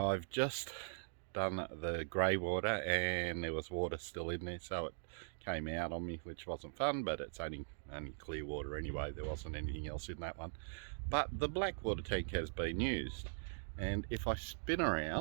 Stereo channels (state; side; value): silent; left; digital silence